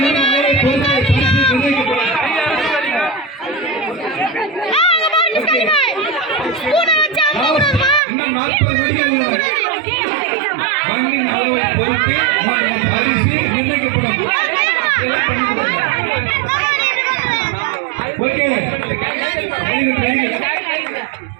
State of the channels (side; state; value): left; drops out; at 8.0 s